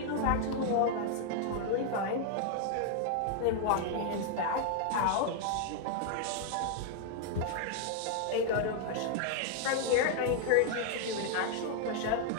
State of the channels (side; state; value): both; different; correlation 0.00